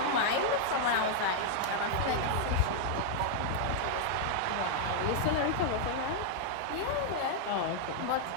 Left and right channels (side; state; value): both; different; correlation -0.01